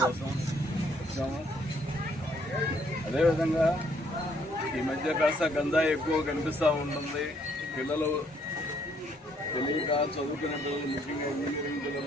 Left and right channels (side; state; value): both; normal; correlation 0.67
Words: కోసం వచ్చాము. అదేవిధంగా ఈ మధ్య కాస్త గంజాయి ఎక్కువ కనిపిస్తూ ఉంటుంది. పిల్లలు తెలియక చదువుకునే పిల్లలు, ముఖ్యంగా ఇంజనీరింగ్